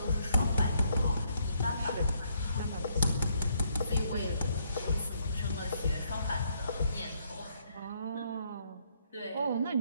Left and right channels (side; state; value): both; inverted; correlation -0.72